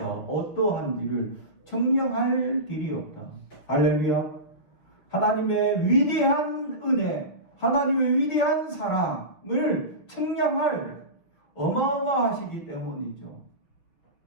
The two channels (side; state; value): right; late; 6.0 ms